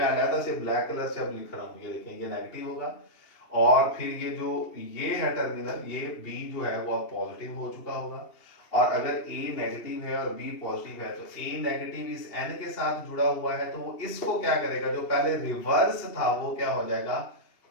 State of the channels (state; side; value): late; right; 2.8 ms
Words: अलग से ब्लैक कलर से अब लिख रहा हूँ, ये देखें ये नेगेटिव होगा। और फिर ये जो ये है टर्मिनल, ये बी जो है वो अब पॉजिटिव हो चुका होगा। और अगर ए नेगेटिव है और बी पॉजिटिव है तो ए नेगेटिव इस एन के साथ जुड़ा हुआ है, तो वो इसको क्या करेगा, जो पहले रिवर्स था वो क्या हो जाएगा,